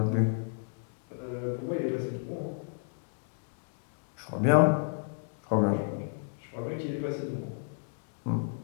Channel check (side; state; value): right; silent; digital silence